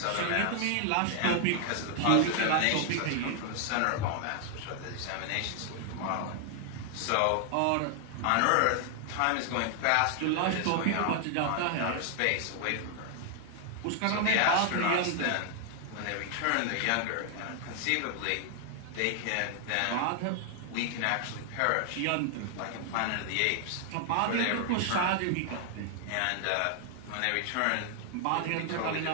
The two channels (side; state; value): both; different; correlation 0.00